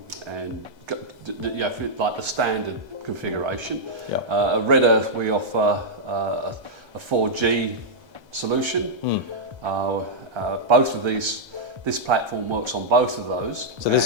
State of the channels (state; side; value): late; left; 1.3 ms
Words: like the standard configuration. Yeah. At RedEarth, we offer a 4G solution. Both of these, this platform works on both of those. So